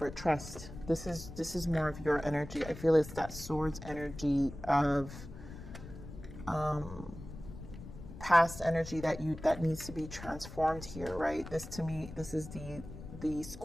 trust. This is more of your energy. I feel it's that swords energy of past energy that needs to be transformed here, right? This, to me, this is the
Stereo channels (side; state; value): left; noise; rumble, 13 dB below the sound